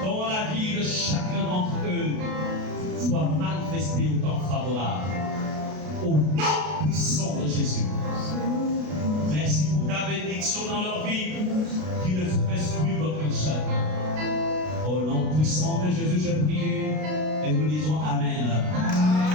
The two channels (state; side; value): late; left; 33 ms